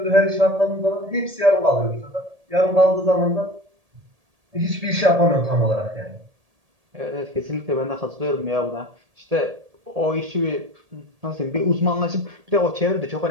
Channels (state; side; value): late; left; 1.8 ms